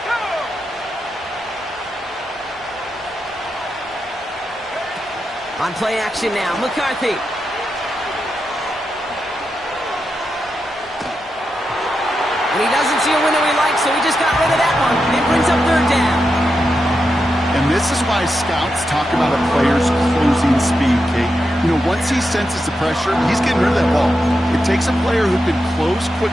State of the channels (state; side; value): normal; both; correlation 0.87